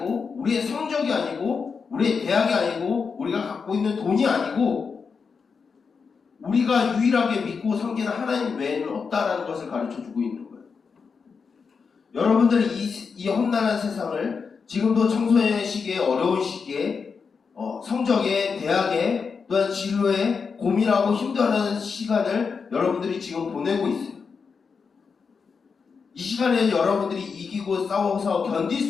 우리의 성적이 아니고 우리의 대학이 아니고 우리가 갖고 있는 돈이 아니고 우리가 유일하게 믿고 섬기는 하나님 외에는 없다라는 것을 가르쳐주고 있는 거예요. 여러분들은 이 험난한 세상을 지금도 청소년의 시기에 어려운 시기에 성적에 대학에 또한 진로에 고민하고 힘들어하는 시간을 여러분들이 지금 보내고 있어요. 이 시간에 여러분들이 이기고 싸워서 견딜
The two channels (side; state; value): right; quieter; 5.5 dB